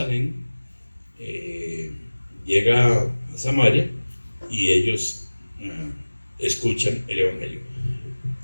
llega a Samaria, y ellos escuchan el evangelio.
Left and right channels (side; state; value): both; inverted; correlation -1.00